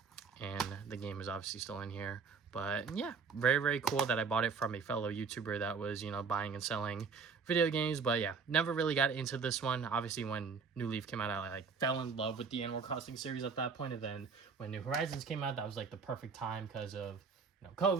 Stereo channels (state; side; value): quieter; left; 5.3 dB